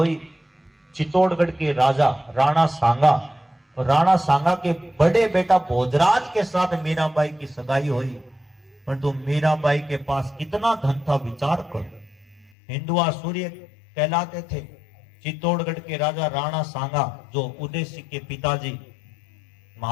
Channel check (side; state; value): right; drops out; at 12.5 s